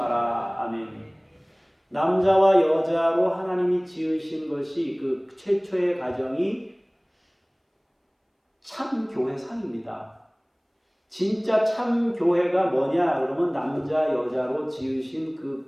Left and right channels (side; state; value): both; identical; correlation 1.00